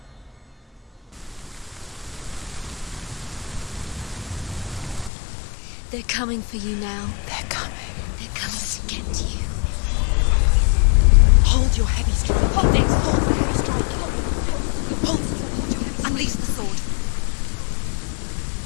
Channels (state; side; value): drops out; right; at 5.1 s